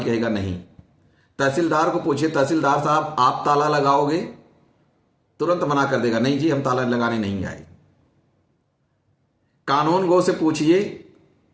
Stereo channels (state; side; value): identical; both; correlation 1.00